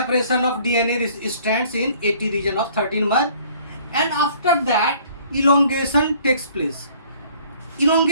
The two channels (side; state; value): both; inverted; correlation -0.56